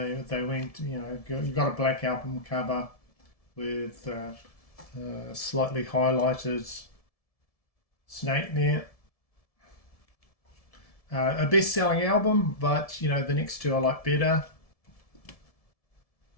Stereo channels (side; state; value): right; late; 1.7 ms